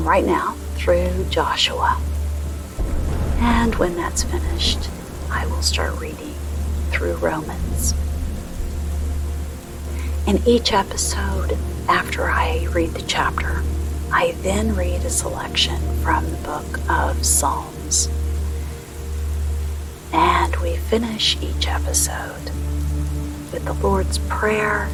right now through Joshua. And when that's finished, I will start reading through Romans. In each episode, after I read the chapter, I then read a selection from the book of Psalms. And we finish each episode with the Lord's Prayer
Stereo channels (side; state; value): both; identical; correlation 1.00